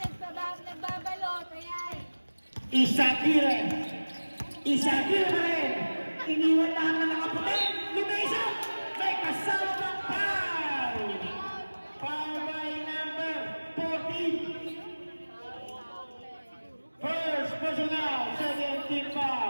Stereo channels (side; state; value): both; inverted; correlation -1.00